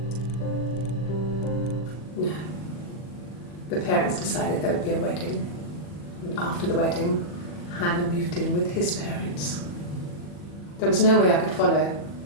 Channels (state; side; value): late; right; 40 ms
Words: No. The parents decided there would be a wedding. And after the wedding, Hannah moved in with his parents. There was no way I could follow,